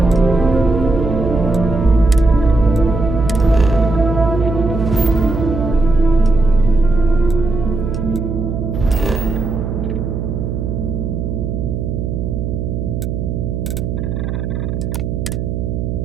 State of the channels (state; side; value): noise; right; hum, 3 dB below the sound